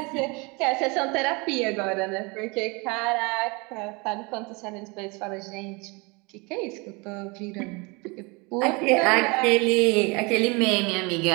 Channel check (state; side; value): quieter; left; 28.0 dB